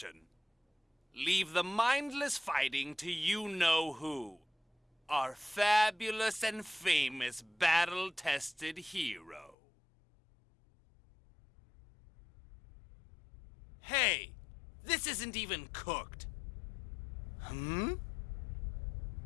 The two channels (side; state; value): right; drops out; at 9.6 s